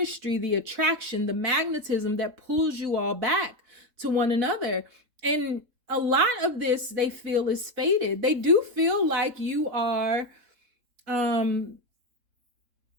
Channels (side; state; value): left; late; 3.7 ms